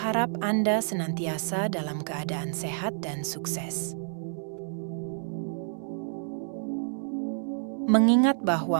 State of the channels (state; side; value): silent; left; 59 dB below the other